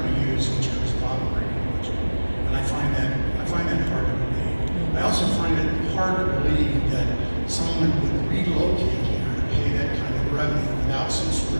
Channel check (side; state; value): both; inverted; correlation -1.00